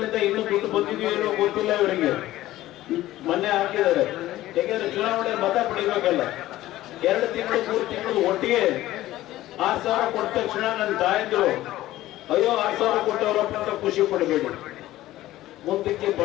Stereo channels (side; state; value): right; quieter; 15.4 dB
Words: ಇನ್ನೂ ದುಡ್ಡು ಬಂದಿದೆಯೋ ಏನೋ ಗೊತ್ತಿಲ್ಲ ಇವರಿಗೆ. ಮೊನ್ನೆ ಹಾಕಿದ್ದಾರೆ, ಯಾಕೆಂದ್ರೆ ಚುನಾವಣೆ ಮತ ಪಡಿಬೇಕಲ್ಲ. 2 ತಿಂಗಳು 3 ತಿಂಗಳು ಒಟ್ಟಿಗೆ 6,000 ಕೊಟ್ಟ ತಕ್ಷಣ ನನ್ನ ತಾಯಂದ್ರು ಅಯ್ಯೋ 6,000 ಕೊಟ್ಟವರಪ್ಪ ಅಂತ ಖುಷಿ ಪಡಬೇಡಿ. ಮುಂದಕ್ಕೆ